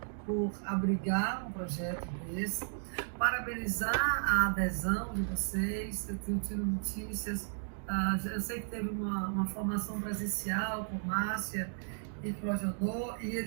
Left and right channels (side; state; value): left; silent; digital silence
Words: por abrigar um projeto desse, parabenizar a adesão de vocês. Eu tenho tido notícias, eu sei que teve uma formação presencial com Márcia e Clojodô, e